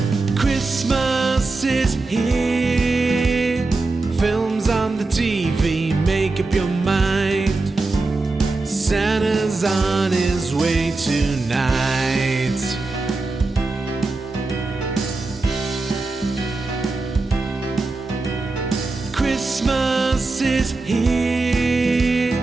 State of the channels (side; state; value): left; quieter; 3.5 dB